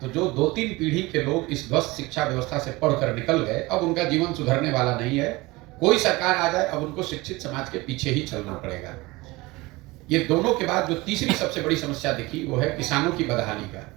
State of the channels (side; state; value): left; quieter; 21.9 dB